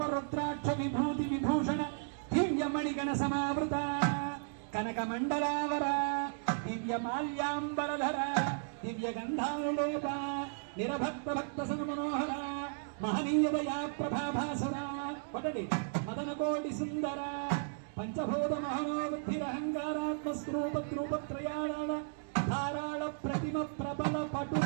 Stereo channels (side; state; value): left; silent; digital silence